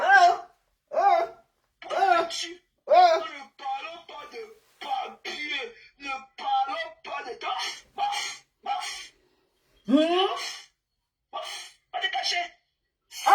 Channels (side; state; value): both; identical; correlation 1.00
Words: Pourquoi tu ne parlons pas de papier. Ne parlons pas de temps. Pas te cacher.